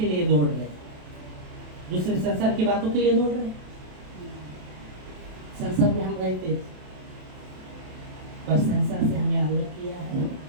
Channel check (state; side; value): late; left; 27 ms